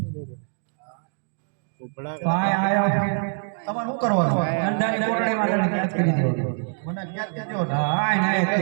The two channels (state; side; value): silent; left; digital silence